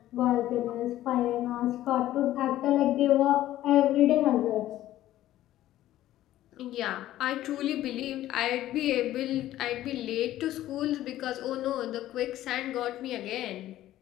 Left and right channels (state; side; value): quieter; right; 13.9 dB